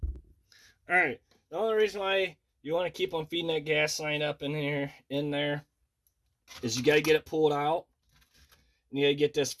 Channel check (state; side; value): identical; both; correlation 1.00